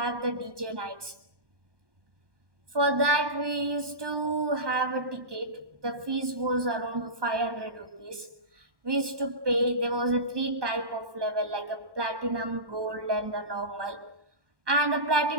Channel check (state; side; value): late; left; 1.2 ms